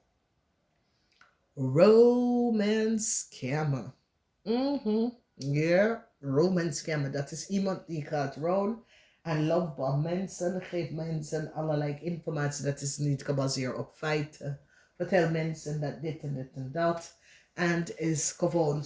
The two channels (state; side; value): identical; both; correlation 1.00